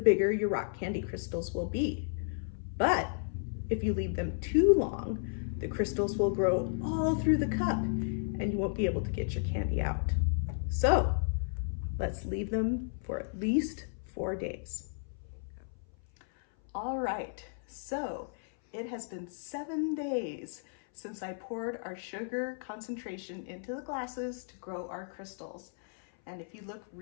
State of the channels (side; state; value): right; silent; 56 dB below the other